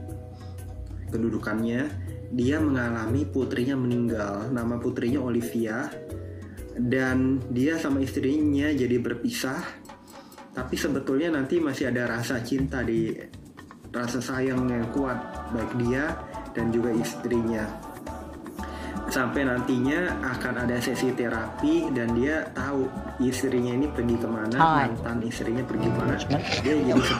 kedudukannya, dia mengalami putrinya meninggal. Nama putrinya Olivia, dan dia sama istrinya jadi berpisah. Tapi sebetulnya nanti masih ada rasa cinta, rasa sayang yang kuat baik dia dan juga istrinya. Sampai nantinya akan ada sesi terapi dan dia tahu istrinya ini pergi kemana, mantan istrinya pergi kemana. Dia jadi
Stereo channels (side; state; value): both; identical; correlation 1.00